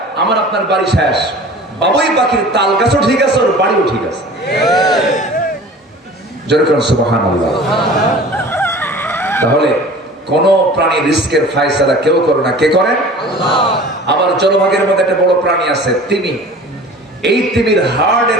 আমার আপনার বাড়ি শেষ। বাবুই পাখির তাল গাছও ঠিক আছে, ওর বাড়িও ঠিক আছে। যেরকম সুবহানাল্লাহ। তাহলে কোন প্রাণী রিস্কের ফায়সালা কেউ করে না, কে করেন? আল্লাহ। আবার জলভাগের মধ্যে একটা বড় প্রাণী আছে, তিমি। এই তিমির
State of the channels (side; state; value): both; normal; correlation 0.42